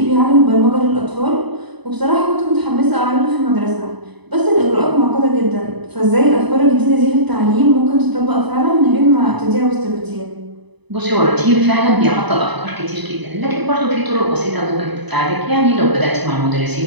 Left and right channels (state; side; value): late; left; 1.0 ms